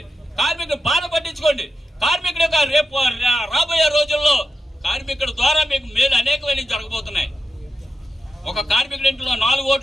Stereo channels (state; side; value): normal; both; correlation 0.89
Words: కార్మికుల బాధ పట్టించుకోండి. కార్మికుడు రేపు రాబోయే రోజుల్లో కార్మికుడి ద్వారా మీకు మేలు అనేకమైన జరగబోతున్నాయి. ఒక కార్మికుడి ఇంట్లో 4